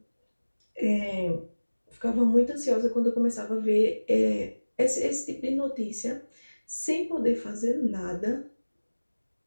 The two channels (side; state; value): both; inverted; correlation -1.00